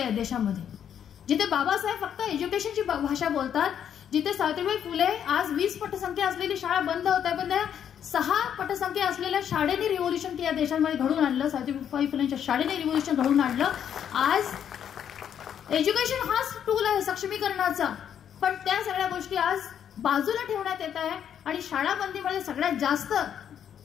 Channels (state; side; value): quieter; right; 9.0 dB